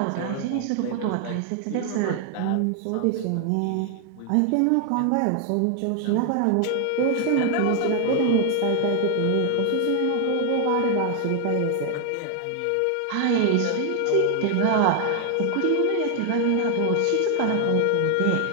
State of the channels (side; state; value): both; different; correlation 0.00